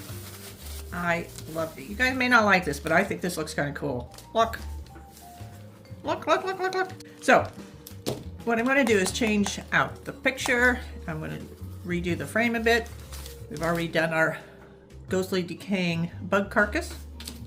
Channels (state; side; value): identical; both; correlation 1.00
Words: I love it. You guys may not like this, but I think this looks kind of cool. Look. Look, look, look, look, look. So, what I'm going to do is change out the picture. I'm going to redo the frame a bit. We've already done our ghostly decaying bug carcass.